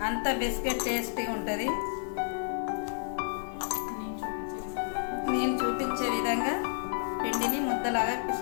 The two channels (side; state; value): right; silent; 57 dB below the other